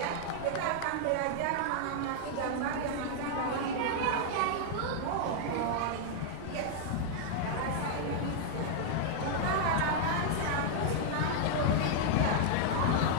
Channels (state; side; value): different; both; correlation 0.00